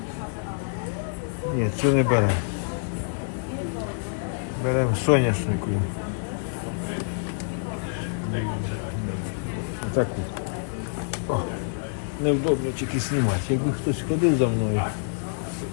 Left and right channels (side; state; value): right; silent; digital silence